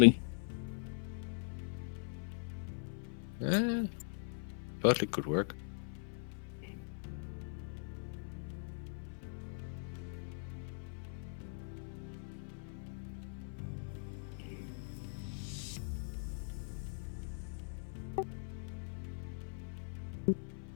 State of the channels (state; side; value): silent; right; 51 dB below the other